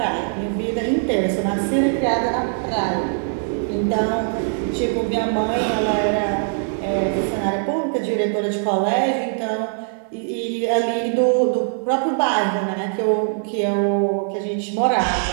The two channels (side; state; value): left; silent; 63 dB below the other